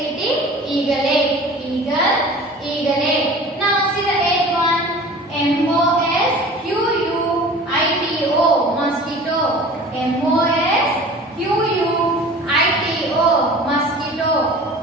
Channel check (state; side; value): normal; both; correlation 0.41